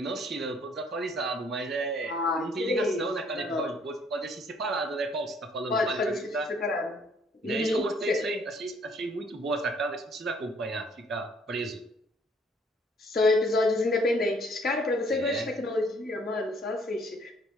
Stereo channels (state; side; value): normal; both; correlation 0.62